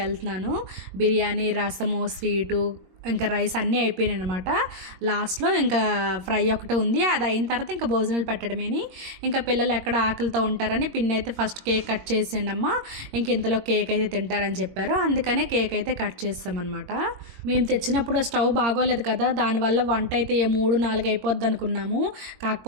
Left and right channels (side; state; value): left; late; 22 ms